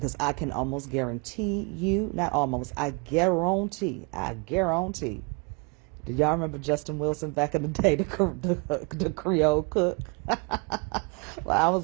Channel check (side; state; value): left; quieter; 31.2 dB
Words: I can almost guarantee you, not almost, I guarantee. Did y'all remember Justin Wilson back in the day, the Creole cook? When I was